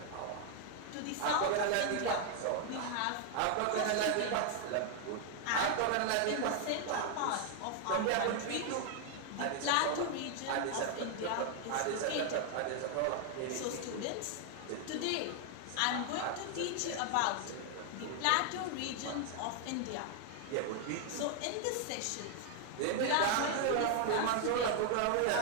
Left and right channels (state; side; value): different; both; correlation 0.00